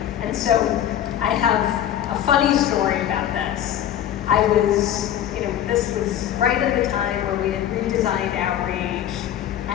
And so I have a funny story about this. This was right at the time where we had redesigned outreach,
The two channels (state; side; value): quieter; right; 10.9 dB